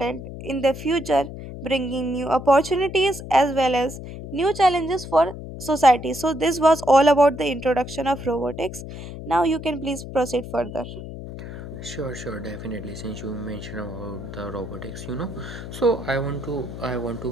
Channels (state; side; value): noise; left; hum, 10 dB below the sound